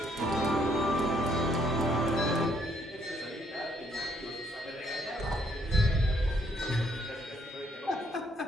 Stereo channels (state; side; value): normal; both; correlation 0.69